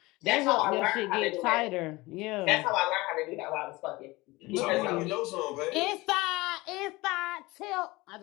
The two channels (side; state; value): right; quieter; 21.4 dB